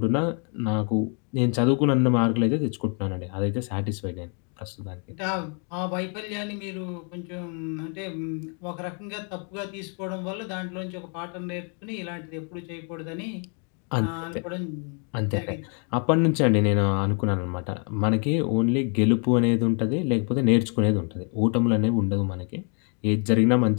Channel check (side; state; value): right; quieter; 39.9 dB